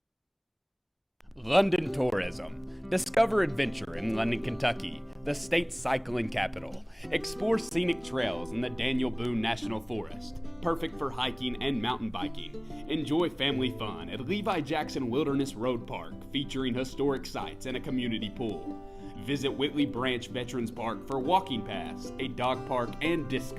London Tourism. Discover adventure in London, Kentucky, the state's cycling capital. Explore scenic trails in the Daniel Boone National Forest, perfect for hiking and mountain biking. Enjoy family fun at Levi Jackson Wilderness Road Park, featuring historic sites and a community pool. Visit Whitley Branch Veterans Park for walking paths, a dog park, and disc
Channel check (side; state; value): both; identical; correlation 1.00